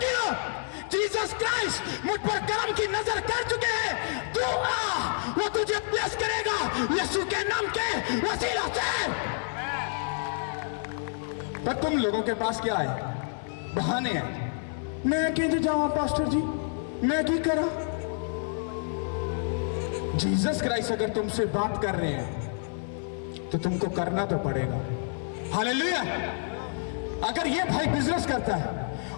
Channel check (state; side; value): silent; right; 56 dB below the other